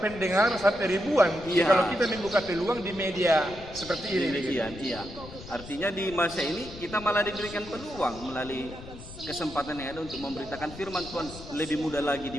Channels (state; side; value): noise; left; rumble, 15 dB below the sound